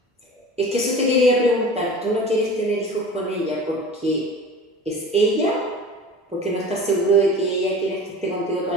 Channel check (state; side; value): normal; both; correlation 0.38